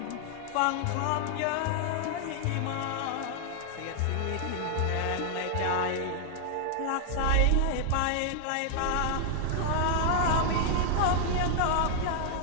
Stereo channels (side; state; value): both; different; correlation -0.01